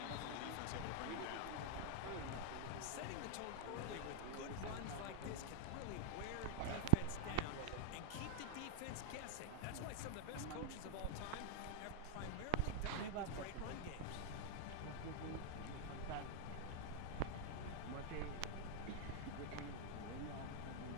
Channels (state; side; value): different; both; correlation -0.01